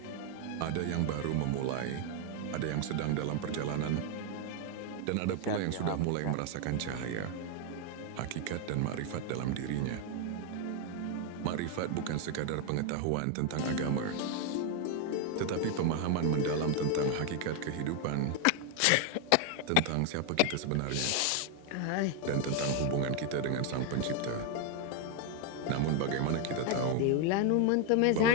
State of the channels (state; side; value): different; both; correlation 0.01